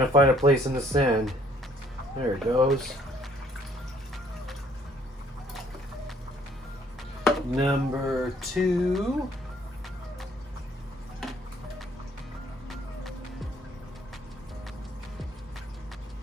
find a place in the sand. There it goes. Number 2.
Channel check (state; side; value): normal; both; correlation 0.62